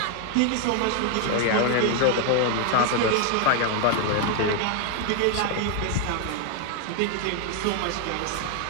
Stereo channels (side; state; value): both; different; correlation 0.01